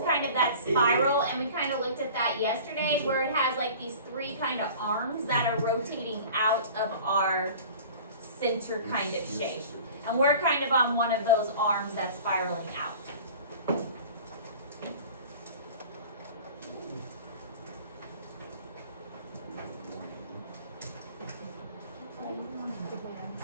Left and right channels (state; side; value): inverted; both; correlation -0.42